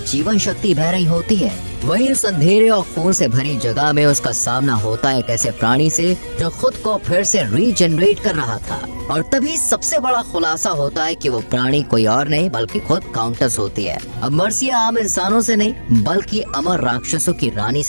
जीवन शक्ति बह रही होती है। वहीं उस अंधेरे और खून से भरी जगह में उसका सामना होता है एक ऐसे प्राणी से जो खुद को फिर से रीजनरेट कर रहा था। और तभी सबसे बड़ा खुलासा होता है कि वो प्राणी कोई और नहीं बल्कि खुद काउंटेस होती है। अब मार्सिया आम इंसानों से नहीं बल्कि अमर राक्षसों की रानी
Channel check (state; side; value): inverted; both; correlation -1.00